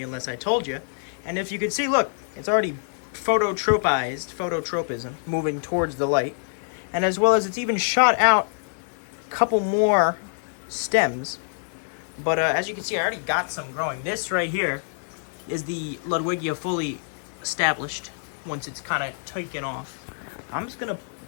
unless I told you. And if you can see, look, it's already phototropism, moving towards the light. And as well as it's even shot out a couple more stems. But as you can see, I already got some growing. This right here is the Ludwigia fully established once it's kind of taken off. I'm just going to,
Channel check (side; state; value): right; silent; digital silence